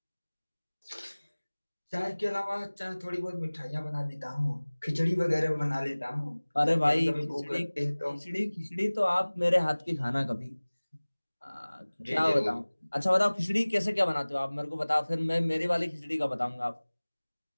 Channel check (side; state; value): both; inverted; correlation -1.00